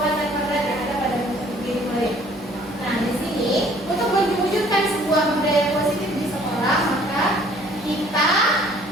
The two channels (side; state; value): both; normal; correlation 0.57